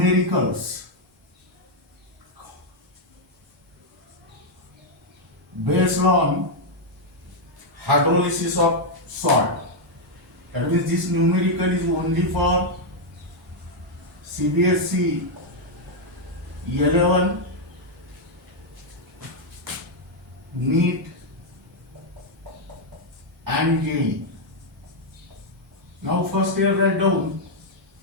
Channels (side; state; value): both; normal; correlation -0.01